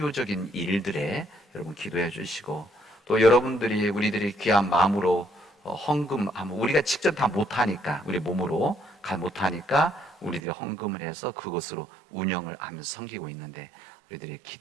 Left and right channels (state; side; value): drops out; left; at 10.4 s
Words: 일들에 여러분 기도해 주시고, 또 우리들이 귀한 마음으로 헌금하면, 우리가 직접 다 못하니까, 우리 몸으로 못하니까 우리들이 헌금을 해서 그것으로 운영을 하면서 섬기고 있는데, 우리들이